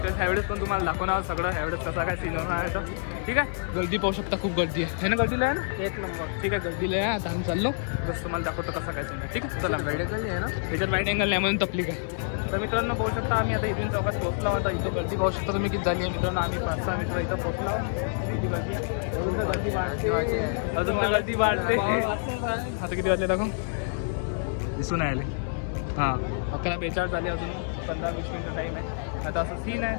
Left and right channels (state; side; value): silent; right; digital silence